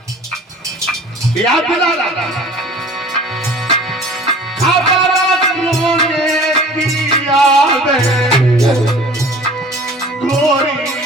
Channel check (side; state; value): both; normal; correlation 0.46